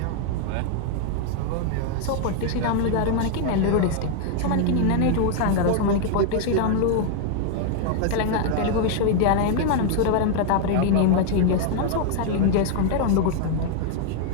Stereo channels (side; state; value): both; different; correlation 0.00